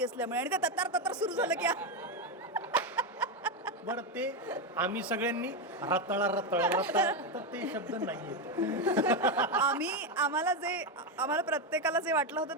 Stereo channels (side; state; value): both; normal; correlation 0.08